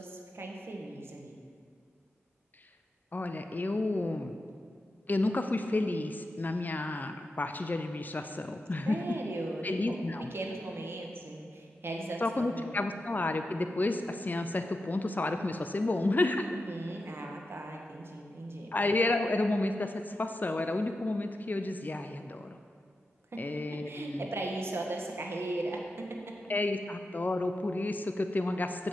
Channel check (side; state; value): both; normal; correlation 0.89